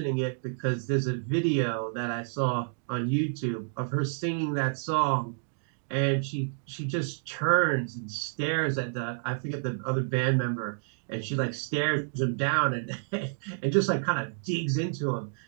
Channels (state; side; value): silent; left; digital silence